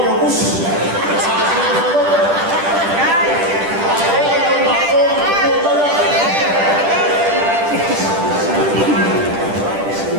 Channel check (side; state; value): left; late; 10 ms